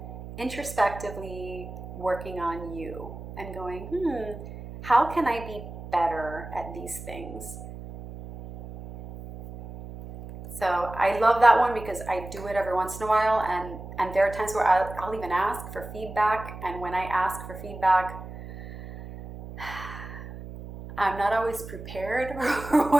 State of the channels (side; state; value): right; noise; hum, 12 dB below the sound